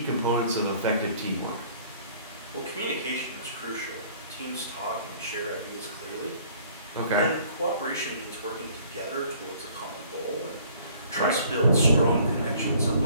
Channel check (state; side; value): inverted; both; correlation -0.56